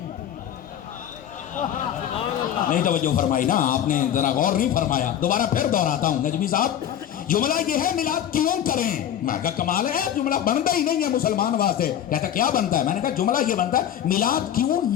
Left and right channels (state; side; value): quieter; right; 10.3 dB